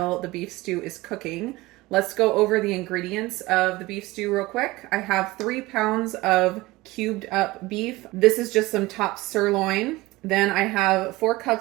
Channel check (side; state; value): left; quieter; 19.9 dB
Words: the beef stew is cooking. Let's go over the ingredients of the beef stew real quick. I have 3 pounds of cubed up beef. This is just some top sirloin. Then I have 4